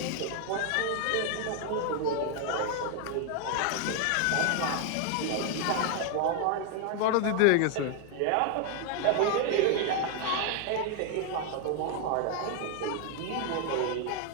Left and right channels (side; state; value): both; different; correlation 0.01